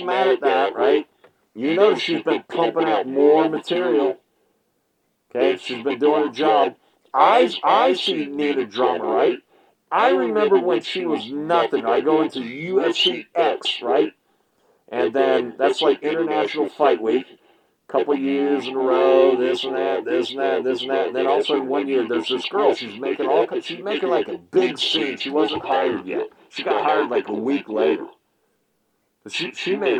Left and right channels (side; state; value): both; identical; correlation 1.00